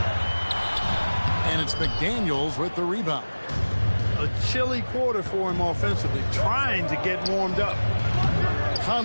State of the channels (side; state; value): both; inverted; correlation -1.00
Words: And it's McDaniels with the rebound. A chilly quarter for him offensively, trying to get warmed up.